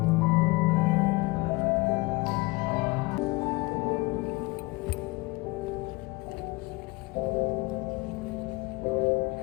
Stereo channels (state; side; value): quieter; right; 23.7 dB